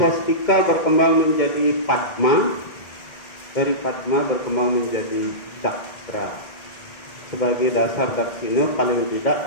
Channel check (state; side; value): late; right; 2.1 ms